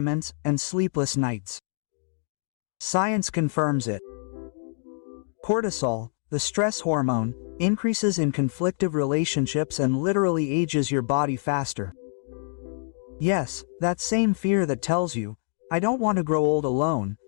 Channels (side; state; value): right; silent; digital silence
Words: and sleepless nights. Science confirms it. Cortisol, the stress hormone, increases in conflictive relationships and literally ages your body faster. Yes, that same fear that tells you, I don't want to grow old alone,